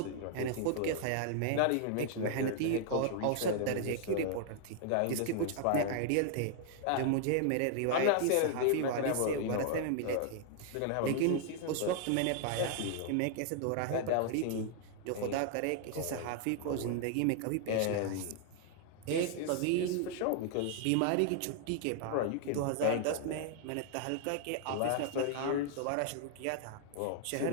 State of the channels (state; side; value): different; both; correlation 0.00